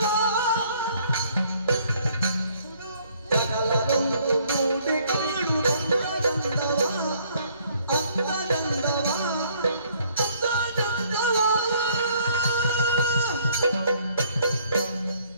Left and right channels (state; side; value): inverted; both; correlation -0.63